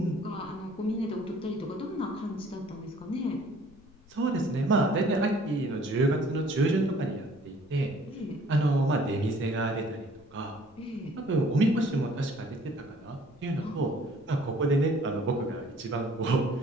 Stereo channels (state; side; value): noise; left; rumble, 27 dB below the sound